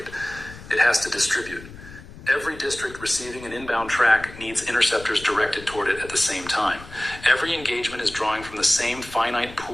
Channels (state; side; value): noise; left; rumble, 16 dB below the sound